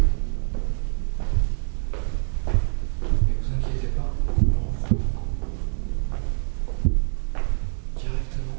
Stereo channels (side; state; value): left; silent; 62 dB below the other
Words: Mais vous inquiétez pas, on reprend